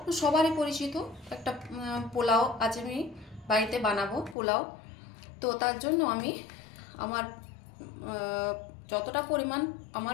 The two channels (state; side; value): drops out; right; at 4.4 s